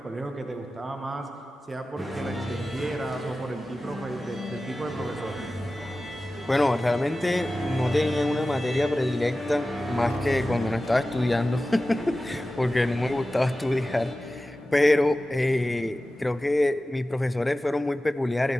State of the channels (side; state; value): both; normal; correlation 0.95